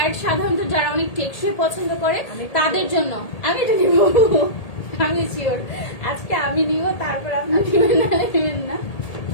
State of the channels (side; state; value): right; late; 1.8 ms